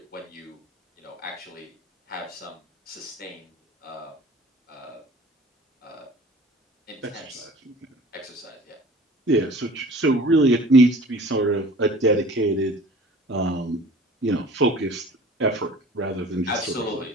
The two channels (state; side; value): normal; both; correlation 0.45